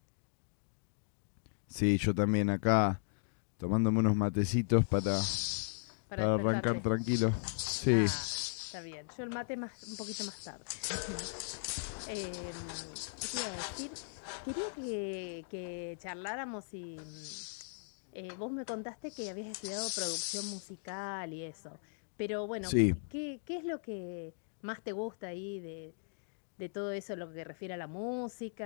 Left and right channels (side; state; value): right; silent; digital silence